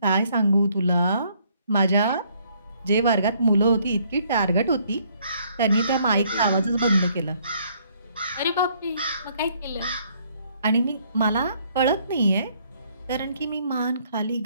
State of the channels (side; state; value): both; inverted; correlation -0.66